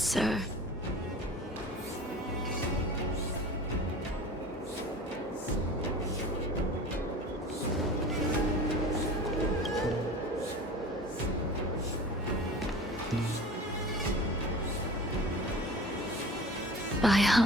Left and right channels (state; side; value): normal; both; correlation 0.39